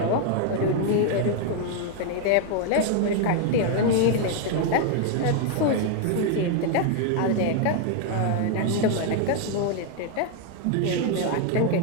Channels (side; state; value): both; different; correlation 0.00